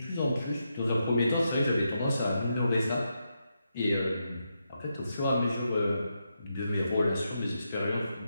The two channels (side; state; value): both; inverted; correlation -0.84